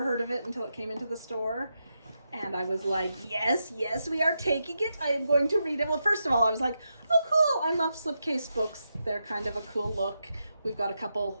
heard of it until it came into the store. And I was like, yes, we are taking it. I am going to read it. Well, first of all, I was like, oh, cool. I love slipcase books. They're kind of a cool look. We've got a couple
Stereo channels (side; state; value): both; inverted; correlation -0.86